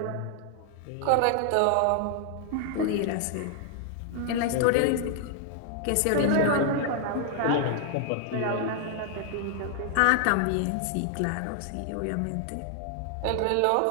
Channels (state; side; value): different; both; correlation 0.00